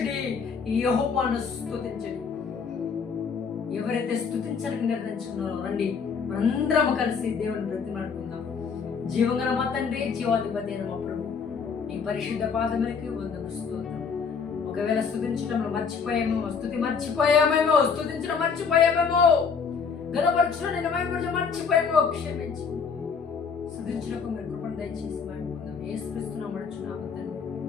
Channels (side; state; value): right; quieter; 5.9 dB